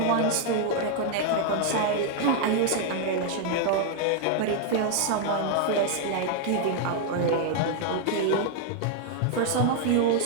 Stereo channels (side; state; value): both; different; correlation 0.00